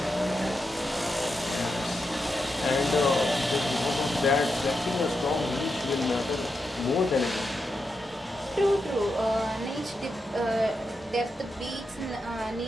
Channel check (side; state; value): both; normal; correlation 0.86